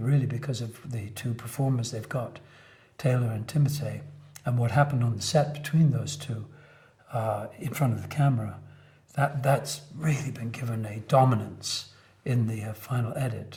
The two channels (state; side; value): identical; both; correlation 1.00